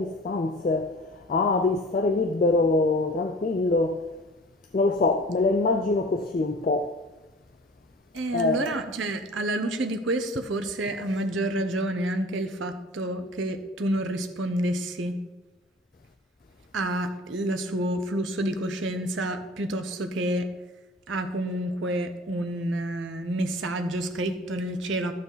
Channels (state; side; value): normal; both; correlation 0.44